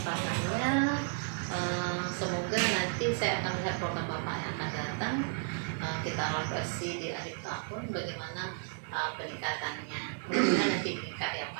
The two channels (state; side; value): silent; left; 56 dB below the other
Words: Semoga nanti saya akan melihat program Bapak yang akan datang. Kita evaluasi di akhir tahun bagaimana peningkatannya. Mudah-mudahan nanti meningkat ya